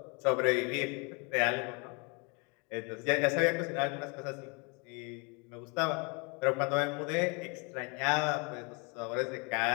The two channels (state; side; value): quieter; right; 32.2 dB